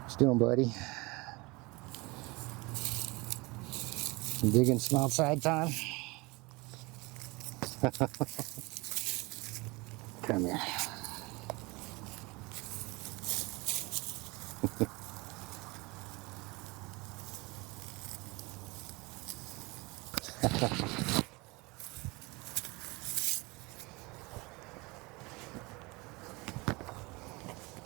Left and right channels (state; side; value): quieter; left; 24.9 dB